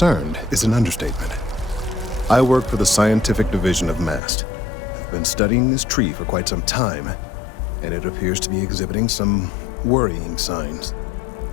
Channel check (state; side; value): drops out; right; at 4.2 s